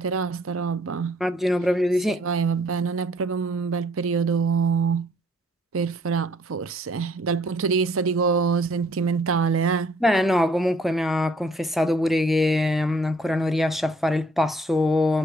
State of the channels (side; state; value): both; normal; correlation 0.62